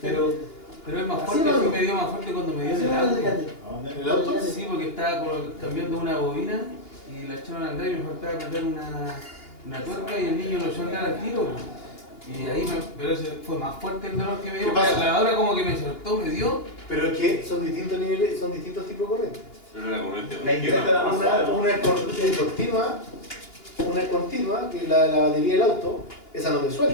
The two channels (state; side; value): late; right; 2.9 ms